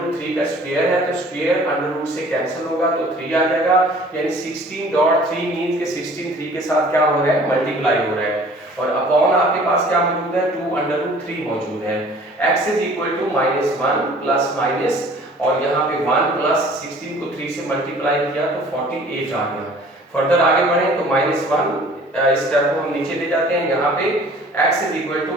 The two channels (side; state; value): both; normal; correlation 0.51